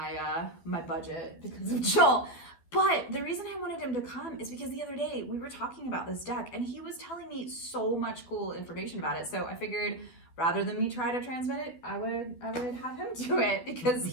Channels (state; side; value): late; right; 12 ms